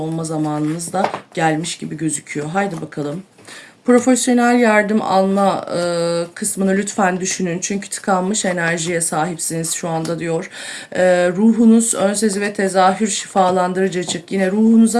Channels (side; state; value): both; identical; correlation 1.00